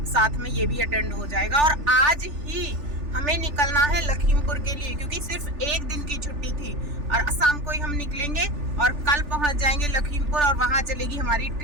साथ में ये भी अटेंड हो जाएगा। और आज ही हमें निकलना है लखीमपुर के लिए, क्योंकि सिर्फ 1 दिन की छुट्टी थी, और शाम को ही हम निकलेंगे और कल पहुंच जाएंगे लखीमपुर, और वहां चलेगी हमारी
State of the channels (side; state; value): left; late; 3.4 ms